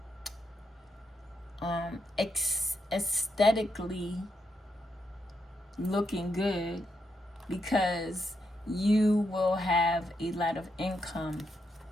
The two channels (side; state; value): both; normal; correlation 0.81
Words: aesthetically looking good, because you will have a lot of income